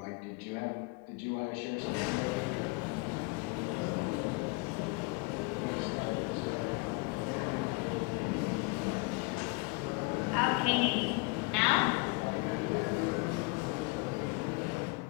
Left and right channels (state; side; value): quieter; right; 28.2 dB